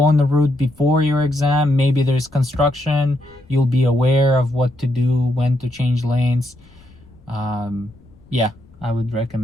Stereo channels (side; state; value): left; noise; rumble, 27 dB below the sound